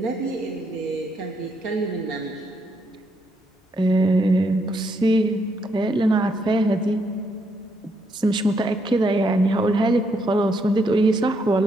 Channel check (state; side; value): normal; both; correlation 0.76